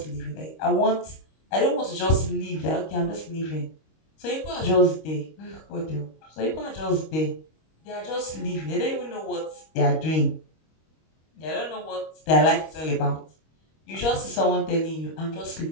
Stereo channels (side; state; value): right; late; 25 ms